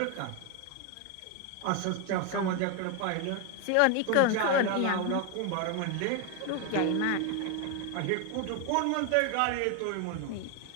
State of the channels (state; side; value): different; both; correlation 0.01